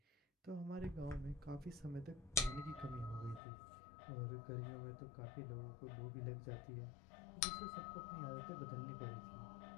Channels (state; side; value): drops out; right; at 3.4 s